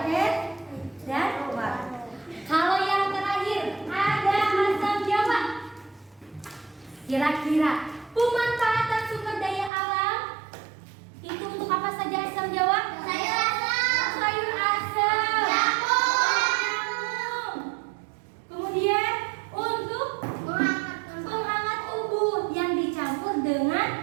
dan warung. Kalau yang terakhir ada asam Jawa. Kira-kira pemanfaatan sumber daya alam itu untuk apa saja asam Jawa? Sayur asam. Sayur asam. Jamu. Kemudian untuk penghangat tubuh yang dicampur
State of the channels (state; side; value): drops out; left; at 9.7 s